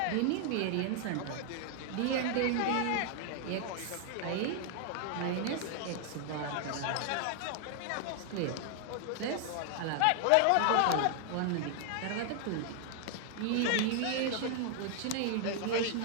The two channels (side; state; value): both; different; correlation 0.00